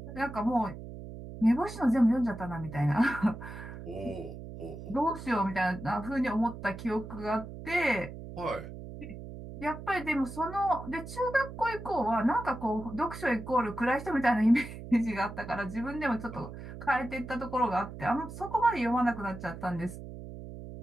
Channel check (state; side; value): noise; right; hum, 11 dB below the sound